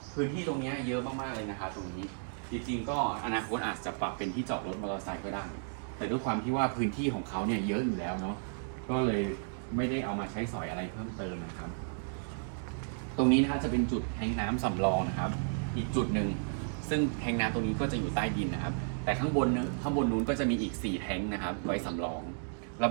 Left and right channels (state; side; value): silent; left; digital silence